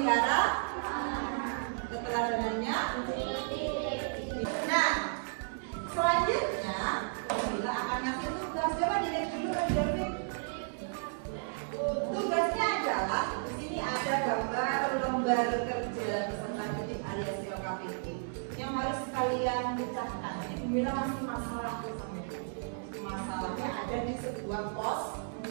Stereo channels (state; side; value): silent; left; digital silence